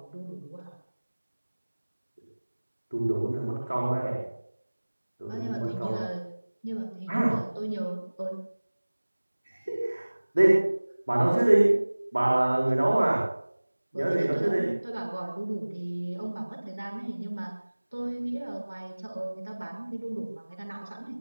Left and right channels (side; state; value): both; inverted; correlation -1.00